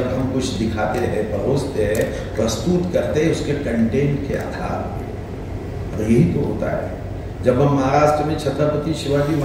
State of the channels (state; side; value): identical; both; correlation 1.00